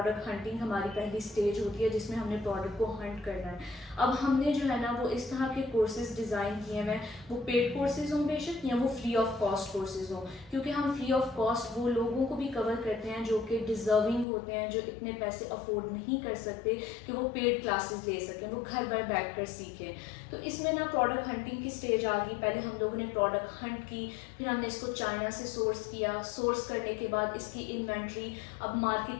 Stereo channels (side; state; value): right; drops out; at 14.2 s